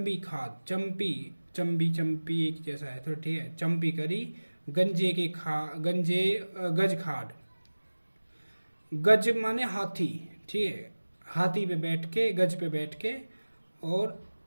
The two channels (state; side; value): inverted; both; correlation -1.00